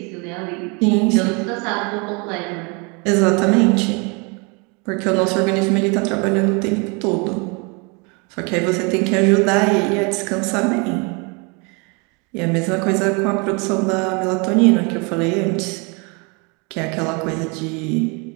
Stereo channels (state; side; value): quieter; left; 31.5 dB